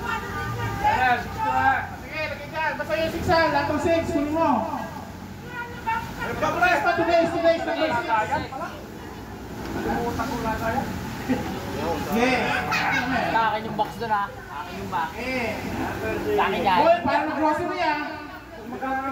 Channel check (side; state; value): both; identical; correlation 1.00